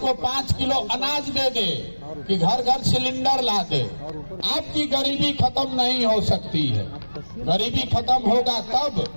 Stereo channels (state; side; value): inverted; both; correlation -1.00